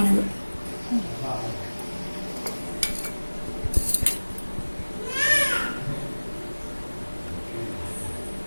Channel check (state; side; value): inverted; both; correlation -1.00